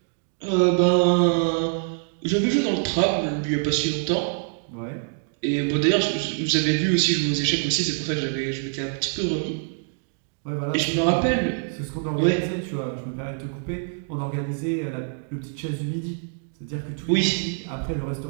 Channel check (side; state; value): left; silent; 62 dB below the other